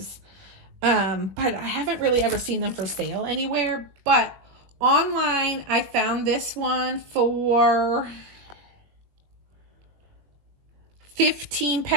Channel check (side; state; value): left; late; 21 ms